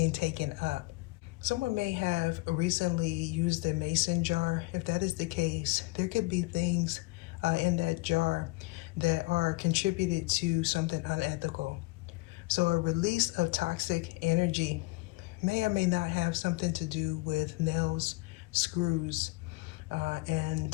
taken up. Someone may have recently used a mason jar. If that is the case, there could be things in that jar that are contributed to something unethical. So a release of toxic energy may or may not have something to do with nails, screws,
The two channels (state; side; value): quieter; right; 23.5 dB